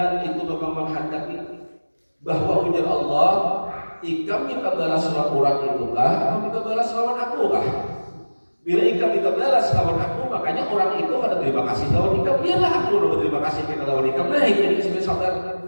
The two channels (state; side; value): inverted; both; correlation -1.00